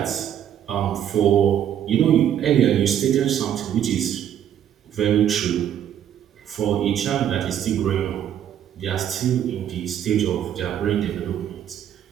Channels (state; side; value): quieter; left; 10.0 dB